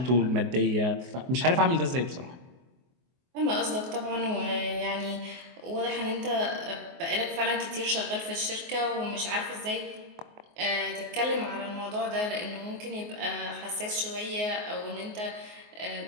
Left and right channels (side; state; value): left; late; 24 ms